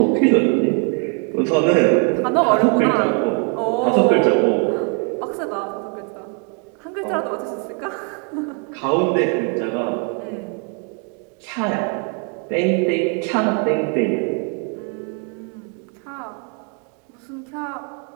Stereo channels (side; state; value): left; quieter; 38.2 dB